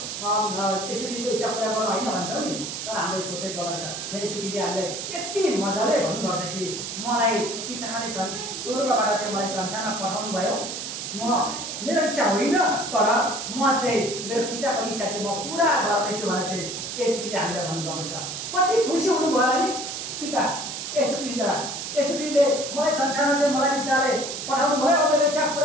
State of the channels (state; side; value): noise; right; hiss, 6 dB below the sound